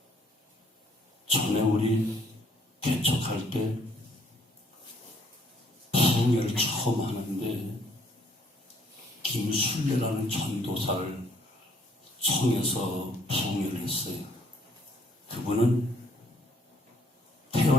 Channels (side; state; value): both; normal; correlation 0.64